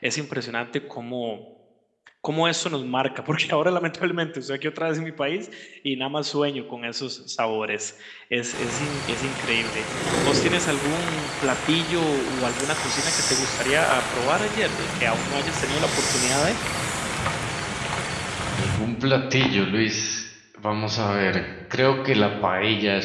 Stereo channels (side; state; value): both; identical; correlation 1.00